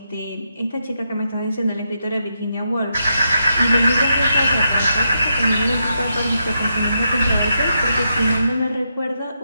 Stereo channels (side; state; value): both; inverted; correlation -0.82